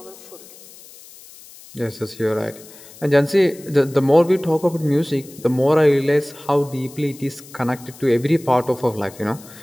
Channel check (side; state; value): left; noise; hiss, 20 dB below the sound